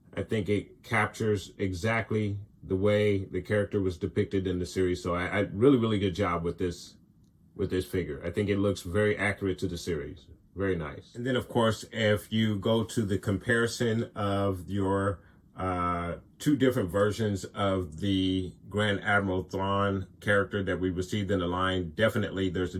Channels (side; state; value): both; identical; correlation 1.00